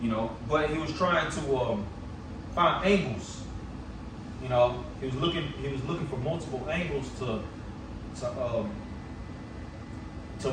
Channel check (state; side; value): identical; both; correlation 1.00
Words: you know, but he was trying to find angles. You know, he was looking for multiple angles to